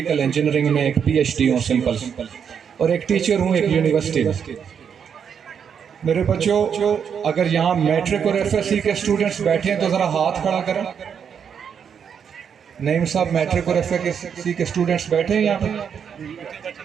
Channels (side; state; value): left; quieter; 7.4 dB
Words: انجینئرنگ میں ایک پی ایچ ڈی ہوں سمپل، اور ایک ٹیچر ہوں ایک یونیورسٹی میں. میرے بچوں، اگر یہاں میٹرک اور ایف ایس سی کے اسٹوڈنٹس بیٹھے ہیں تو ذرا ہاتھ کھڑا کریں. نعیم صاحب، میٹرک اور ایف ایس سی کے اسٹوڈنٹس بیٹھے ہیں یہاں پہ؟